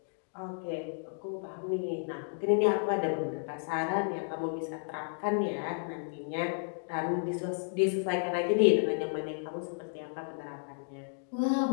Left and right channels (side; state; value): right; silent; digital silence